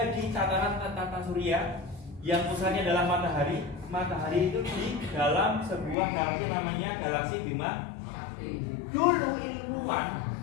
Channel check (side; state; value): right; drops out; at 6.0 s